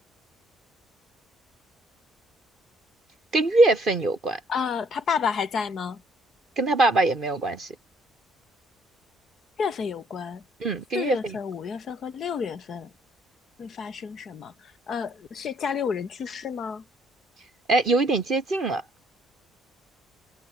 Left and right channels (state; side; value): normal; both; correlation 0.65